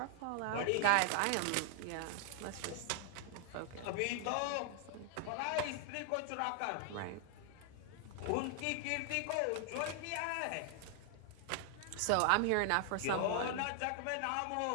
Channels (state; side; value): different; both; correlation 0.00